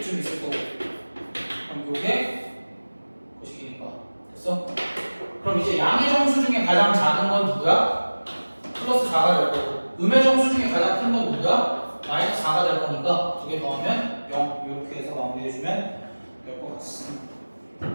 있을 거고 그럼 요게 거식이니까 됐어? 그럼 이제 양의 정수 중에 가장 작은 건 누구야? 플러스 4가 될 거고 음의 정수 중에 가장 큰 건 누구야? 마이너스 4가 될 거니까 두 개 더하면 0 이렇게 해서 마무리해주면 될 것 같습니다.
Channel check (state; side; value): inverted; both; correlation -1.00